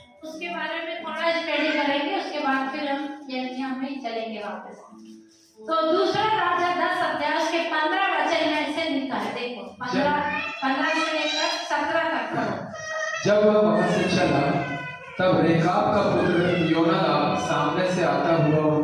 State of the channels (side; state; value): both; identical; correlation 1.00